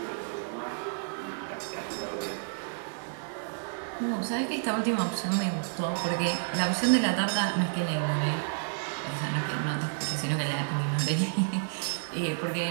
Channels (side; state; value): left; silent; digital silence